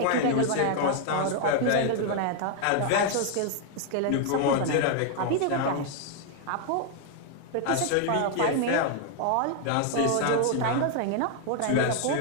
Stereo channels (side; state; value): both; different; correlation 0.00